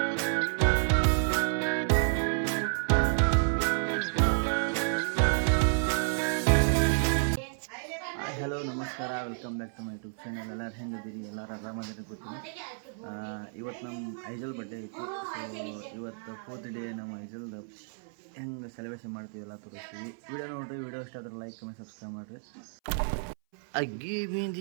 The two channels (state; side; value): silent; left; 57 dB below the other